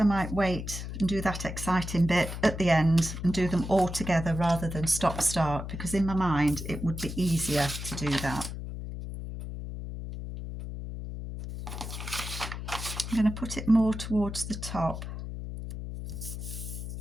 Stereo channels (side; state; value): left; noise; hum, 7 dB below the sound